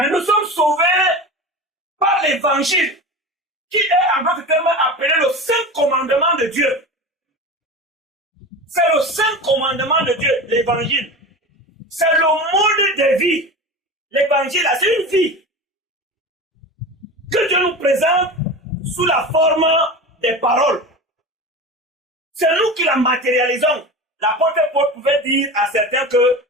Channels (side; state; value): both; normal; correlation 0.29